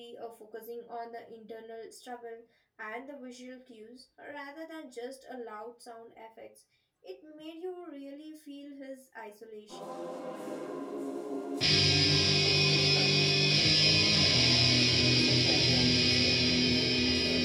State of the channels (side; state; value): both; identical; correlation 1.00